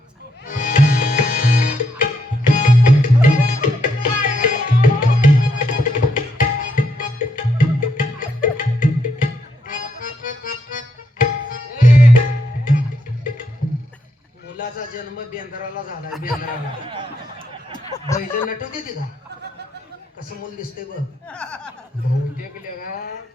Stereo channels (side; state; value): both; normal; correlation 0.77